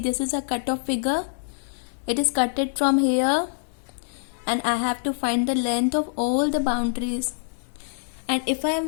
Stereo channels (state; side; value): silent; right; digital silence